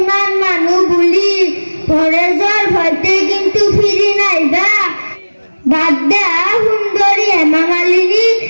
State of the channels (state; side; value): inverted; both; correlation -1.00